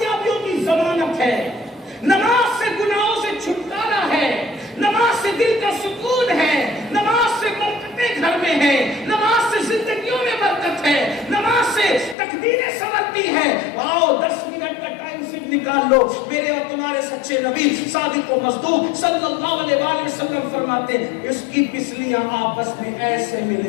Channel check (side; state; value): right; drops out; at 12.2 s